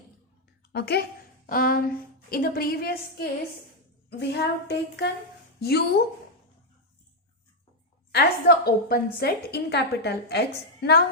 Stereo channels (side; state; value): both; normal; correlation 0.00